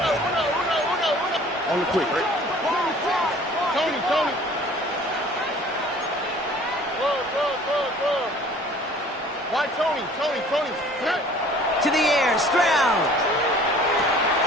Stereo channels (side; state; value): both; normal; correlation 0.50